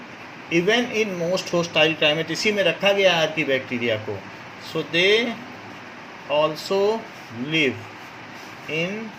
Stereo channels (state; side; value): identical; both; correlation 1.00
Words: even in most hostile climate. इसी में रखा गया आर्की बैक्टीरिया को. So they also live in